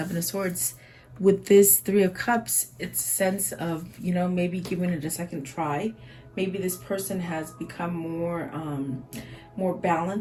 of Swords, with this Three of Cups, it's a sense of, you know, maybe giving it a second try. Maybe this person has become more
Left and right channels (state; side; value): identical; both; correlation 1.00